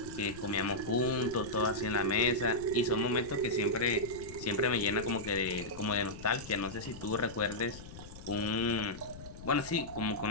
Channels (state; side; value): noise; left; rumble, 14 dB below the sound